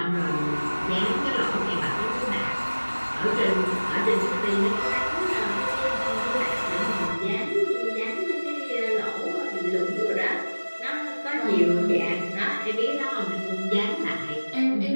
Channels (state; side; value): inverted; both; correlation -1.00